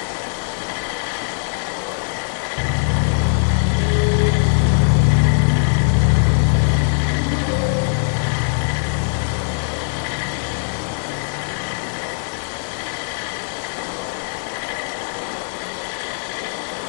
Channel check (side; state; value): right; silent; digital silence